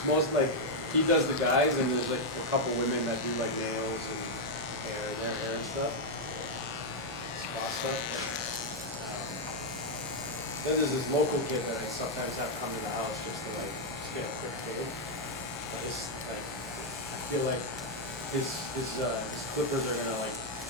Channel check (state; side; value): normal; both; correlation 0.00